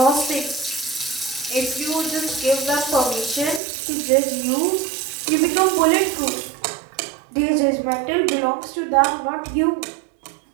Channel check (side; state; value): left; drops out; at 3.6 s